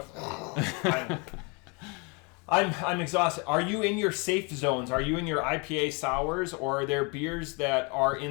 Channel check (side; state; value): right; quieter; 31.6 dB